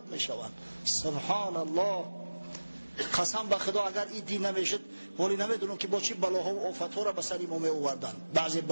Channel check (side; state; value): both; inverted; correlation -1.00